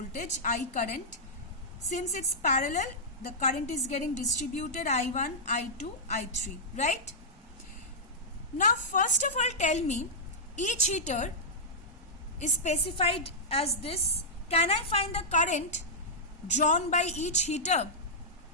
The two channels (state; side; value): normal; both; correlation -0.11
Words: I current. Since it's parallel, the current is getting distributed I1, I2, I3, right? Now first of all tell me, each heater is specified as this. Can I find the current drawn by each heater?